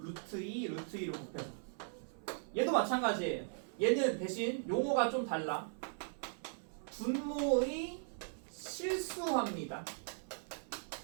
2, 루트 2를 곱해서. 얘도 마찬가지예요. 얘는 대신 용어가 좀 달라. 분모의 실수화입니다.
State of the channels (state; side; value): silent; left; 52 dB below the other